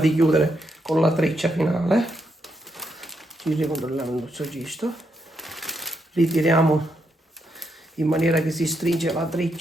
chiudere con la treccia finale. Ci ricontrolliamo il nostro cesto. Ritiriamo in maniera che si stringe la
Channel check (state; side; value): normal; both; correlation 0.80